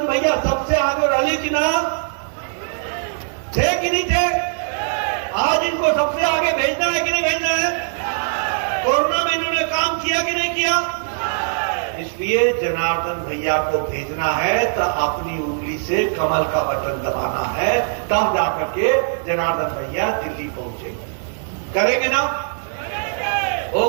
भैया सबसे आगे रैली की नाम थे कि नहीं थे? आज इनको सबसे आगे भेजना है कि नहीं भेजना है? कोरोना में इन्होंने काम किया कि नहीं किया? इसलिए जनार्दन भैया को भेजना है तो अपनी उंगली से कमल का बटन दबाना है, तब जाकर के जनार्दन भैया दिल्ली पहुंचेंगे। करेंगे ना?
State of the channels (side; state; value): left; silent; digital silence